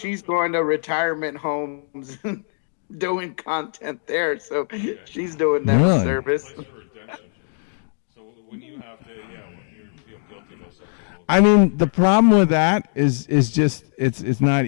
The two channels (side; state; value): right; silent; digital silence